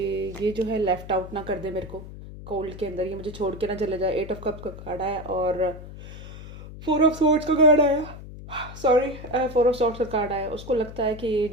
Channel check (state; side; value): noise; left; hum, 13 dB below the sound